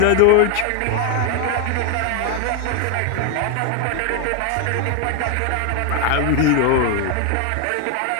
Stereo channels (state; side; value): different; both; correlation 0.01